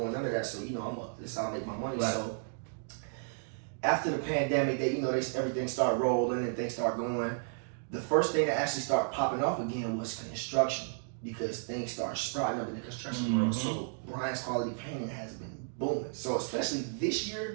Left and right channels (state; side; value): silent; left; digital silence